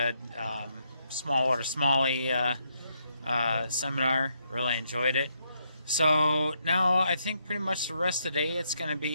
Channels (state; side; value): inverted; both; correlation -0.76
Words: smallwater smallie seminar. Really enjoyed it. So now I think pretty much the rest of the day it's going to